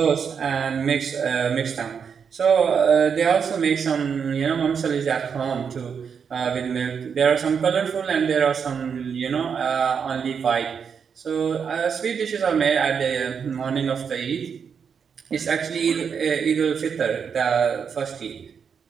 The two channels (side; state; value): left; quieter; 6.7 dB